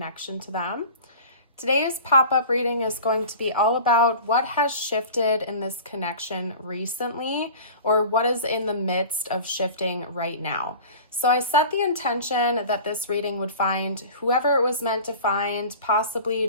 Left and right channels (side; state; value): both; inverted; correlation -0.39